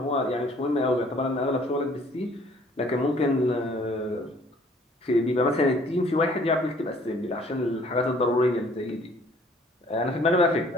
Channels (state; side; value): normal; both; correlation 0.58